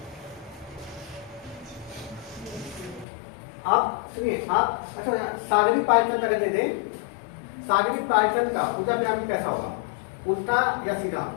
आप सुनिए, आप अच्छा सागरी पायचन अगर दे दें, सागरी पायचन का ऊर्जा पिरामिड कैसा होगा? उल्टा या सीधा?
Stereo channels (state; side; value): drops out; right; at 3.1 s